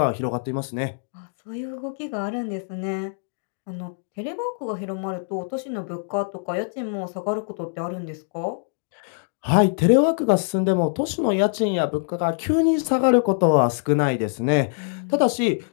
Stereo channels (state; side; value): silent; right; digital silence